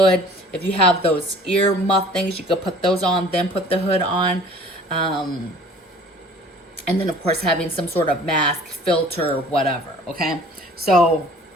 If you have those ear muff things, you could put those on, then put the hood on. And then of course having some sort of mask, filter, whatever, okay? So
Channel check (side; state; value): both; normal; correlation 0.49